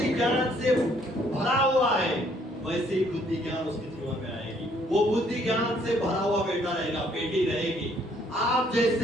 ज्ञान से भरा हुआ है, वैसे ही बुद्धि ज्ञान उसके जीवन में आएगी। वो बुद्धि ज्ञान से भरा हुआ बेटा रहेगा, बेटी रहेगी। आप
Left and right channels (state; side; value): normal; both; correlation 0.65